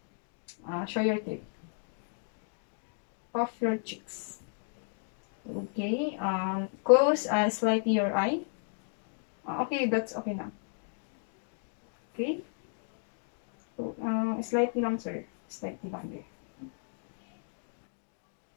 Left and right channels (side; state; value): right; silent; 55 dB below the other